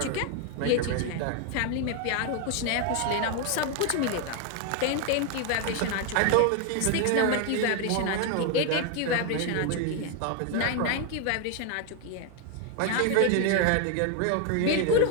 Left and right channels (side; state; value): both; different; correlation 0.01